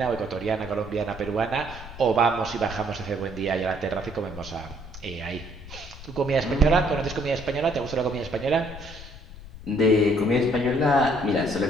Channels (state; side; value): noise; left; rumble, 14 dB below the sound